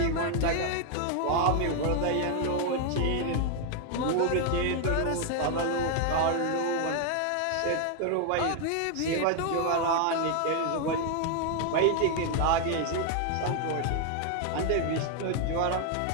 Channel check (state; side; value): different; both; correlation 0.00